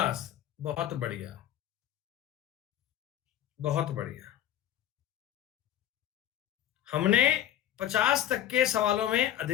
बहुत बढ़िया, बहुत बढ़िया। हमने 50 तक के सवालों में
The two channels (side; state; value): right; quieter; 11.6 dB